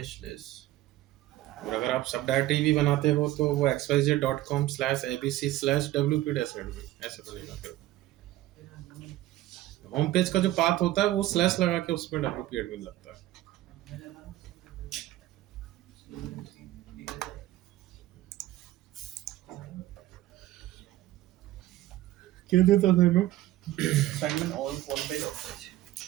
slash. और अगर आप सब डायरेक्टरी भी बनाते हो तो वो xyz.com/abc/wp-admin ऐसे बनेगा। फिर होम पेज का जो पाथ होता है वो स्लैश लगा के उसमें wp admin लगता है। क्या देता था मैं? Assignment on page of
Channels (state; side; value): quieter; left; 15.5 dB